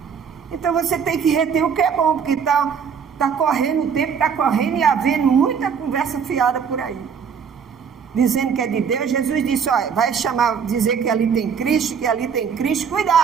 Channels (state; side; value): quieter; left; 6.8 dB